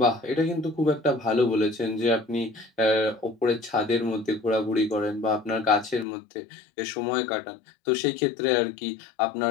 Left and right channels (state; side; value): drops out; right; at 6.1 s